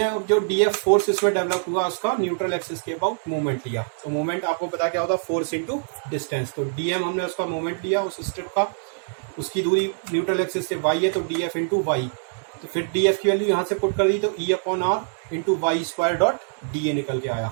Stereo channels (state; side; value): silent; left; digital silence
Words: जो डी एफ फोर्स इसमें डेवलप हुआ उसका न्यूट्रल एक्सिस के अबाउट मूवमेंट लिया। तो मूवमेंट आपको पता क्या होता है, फोर्स इंटू डिस्टेंस। तो डी एम हमने उसका मूवमेंट लिया उस स्ट्रिप का, उसकी दूरी न्यूट्रल एक्सिस से वाई है तो डी एफ इंटू वाई। तो फिर डी एफ की वैल्यू यहाँ से पुट कर दी तो E upon R into Y square dot D A निकल के